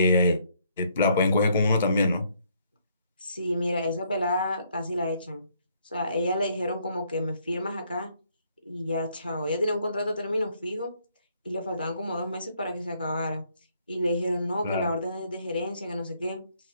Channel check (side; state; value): both; inverted; correlation -0.68